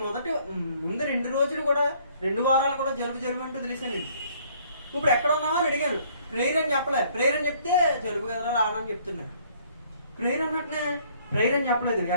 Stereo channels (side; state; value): both; inverted; correlation -0.61